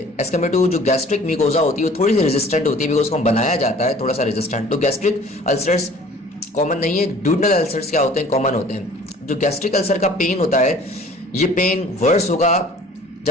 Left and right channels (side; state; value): both; normal; correlation 0.50